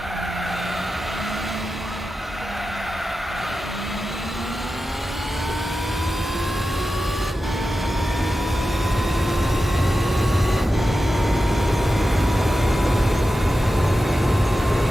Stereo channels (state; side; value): normal; both; correlation 0.92